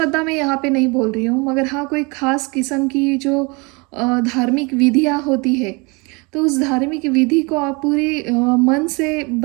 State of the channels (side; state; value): left; quieter; 28.8 dB